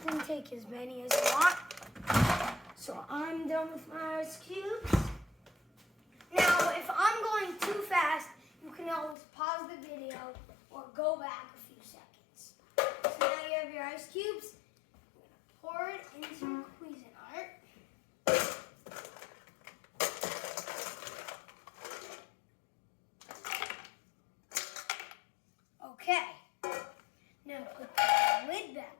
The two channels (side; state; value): right; drops out; at 9.2 s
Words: take as many as you want. So I'm done with my ice cubes. Now, if I'm going too fast, you can always pause the video or go back a few seconds. So now you have your ice cubes. You're gonna pour it into your Cuisinart. Okay, now put the lid